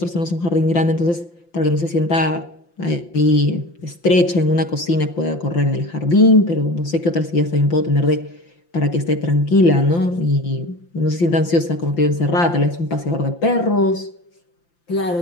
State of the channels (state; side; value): late; right; 5.8 ms